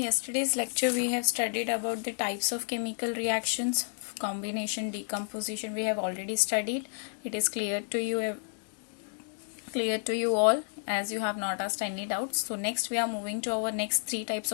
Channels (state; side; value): silent; right; digital silence